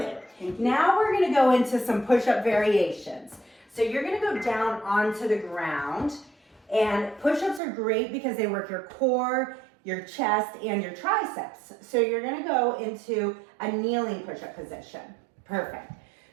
Thank you. Now we're going to go into some push-up variations. So you're going to go down onto the ground, and push-ups are great because they work your core, your chest, and your triceps. So you're going to go into a kneeling push-up position. Perfect.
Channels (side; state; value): left; drops out; at 7.6 s